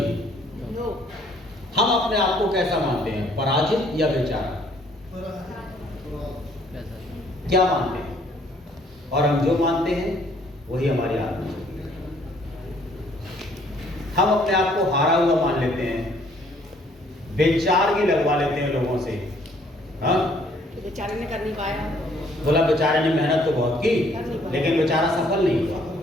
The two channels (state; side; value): normal; both; correlation 0.63